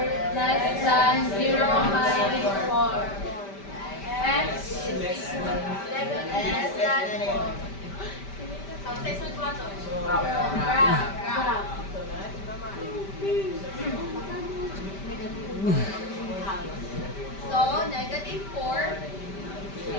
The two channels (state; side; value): late; right; 5.1 ms